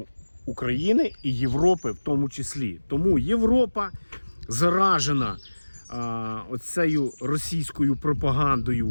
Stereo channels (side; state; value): both; inverted; correlation -1.00